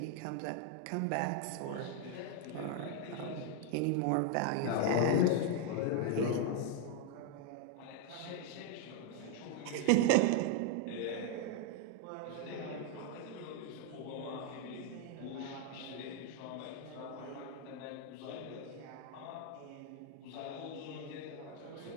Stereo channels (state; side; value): different; both; correlation 0.01